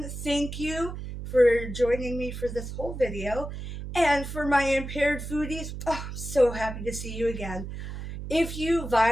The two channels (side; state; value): right; noise; hum, 8 dB below the sound